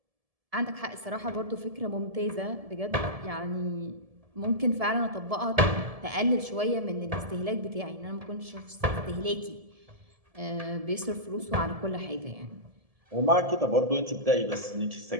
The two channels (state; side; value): late; left; 1.7 ms